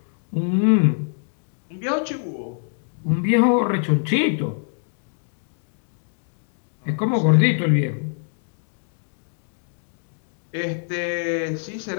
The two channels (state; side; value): silent; right; digital silence